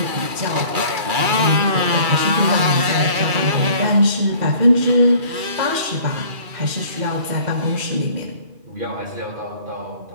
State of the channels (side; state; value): left; late; 2.3 ms